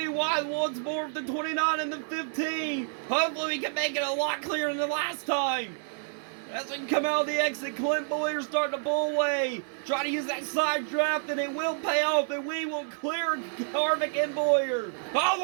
wide once more with the 29 and the 15. Hopefully we can make it a lot clearer than the last time. As we come out of the exit, Clint Bowyer starting to pull away. Try to use that side draft and it will pay off, and we will clear Harvick and Bowyer.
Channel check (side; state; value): left; silent; 59 dB below the other